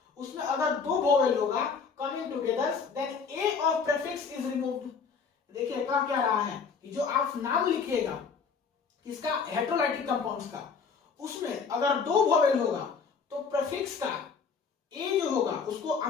उसमें अगर 2 वोवेल होगा coming together, then a of prefix is removed. देखिए क्या रहा है कि जो आप नाम लिखिएगा किसका, हेटेरोलाइटिक कंपाउंड्स का, उसमें अगर 2 वोवेल होगा तो प्रीफिक्स का ए जो होगा उसको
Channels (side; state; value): right; quieter; 5.6 dB